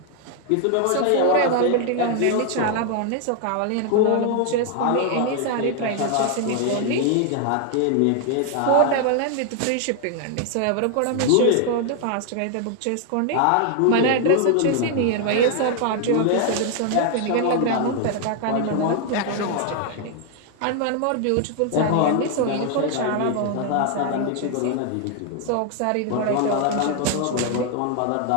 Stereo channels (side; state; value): both; different; correlation 0.00